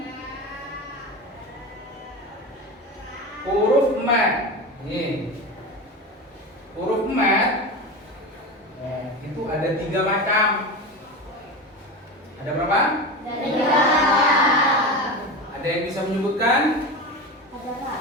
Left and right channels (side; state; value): both; normal; correlation 0.25